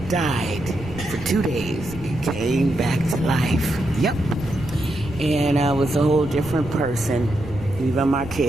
died for 2 days. It came back to life. Yep. And I was a whole different person. Even my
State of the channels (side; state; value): right; noise; rumble, 13 dB below the sound